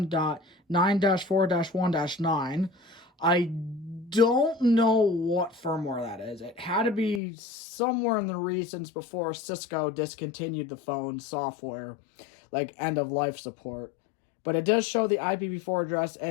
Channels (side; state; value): right; drops out; at 7.2 s